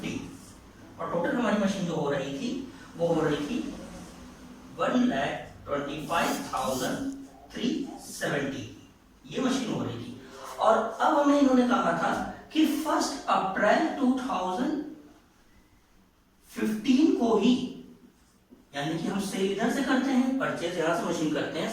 और टोटल हमारी मशीन जो हो रही थी वो हो रही थी 1,25,370। ये मशीन हो रही थी। और अब हमें इन्होंने कहा था कि 1 अप्रैल 2015 को ही, यानी कि हम सेल इधर से करते हैं, परचेज यहां से मशीन करते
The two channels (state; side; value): identical; both; correlation 1.00